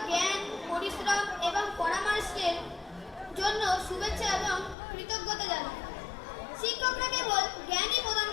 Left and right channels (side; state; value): right; drops out; at 4.8 s